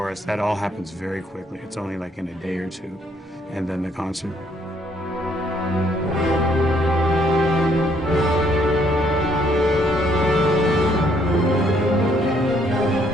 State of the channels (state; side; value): normal; both; correlation 0.68